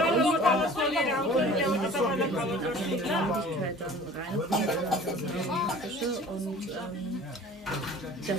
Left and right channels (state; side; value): normal; both; correlation 0.45